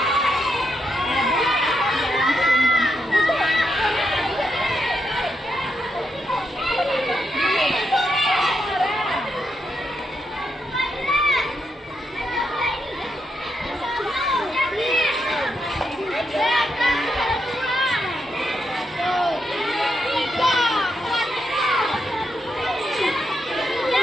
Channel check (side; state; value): both; normal; correlation 0.82